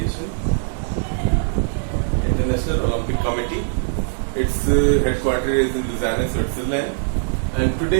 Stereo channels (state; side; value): silent; left; digital silence